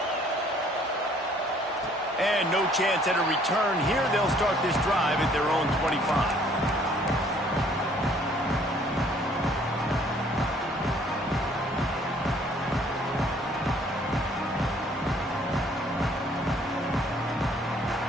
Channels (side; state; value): both; normal; correlation 0.60